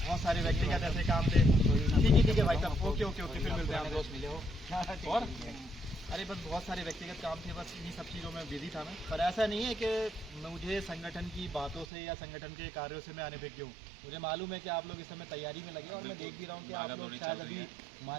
बहुत सारे व्यक्तिगत ऐसे काम थे। ठीक है भाई साहब, ओके ओके ओके, फिर मिलते हैं। दोस्त मिले हो और अरे बस बहुत सारे व्यक्तिगत काम थे, बस इन्हीं सब चीज़ों में बिजी था मैं। पर ऐसा नहीं है कि मुझे संगठन की बातों से या संगठन के कार्यों से मैं अनभिज्ञ हूँ। मुझे मालूम है कि आप लोग इस समय तैयारी में लगे और मैं देख भी रहा हूँ कि आप लोग शायद अभी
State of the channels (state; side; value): drops out; left; at 11.9 s